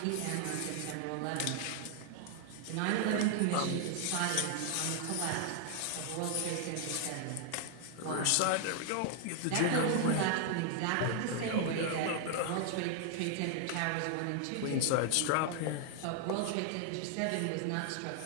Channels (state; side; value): different; both; correlation 0.00